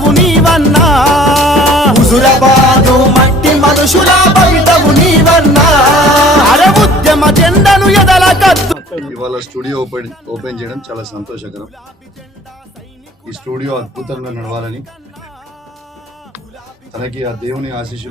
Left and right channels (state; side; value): normal; both; correlation 0.50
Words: నీవన్నా హుజురాబాదు మట్టి మనుషుల భవితవు నీవన్నా అరే ఉద్యమ జెండను ఎదల కత్తు. ఇవాళ స్టూడియో ఓపెన్ చేయడం చాలా సంతోషకరం. ఈ స్టూడియో అద్భుతంగా నడవాలని, తనకి ఆ దేవుని